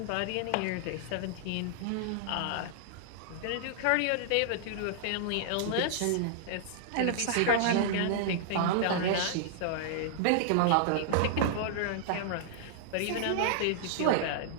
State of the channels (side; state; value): both; different; correlation -0.01